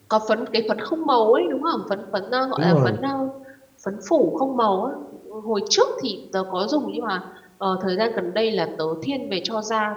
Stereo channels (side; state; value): both; identical; correlation 1.00